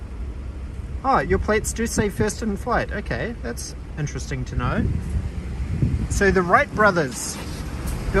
Oh, your plates do say first in flight. Okay, that's interesting to know. So the Wright brothers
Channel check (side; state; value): both; identical; correlation 1.00